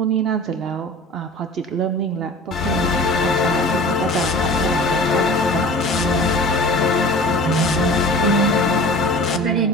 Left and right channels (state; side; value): normal; both; correlation 0.40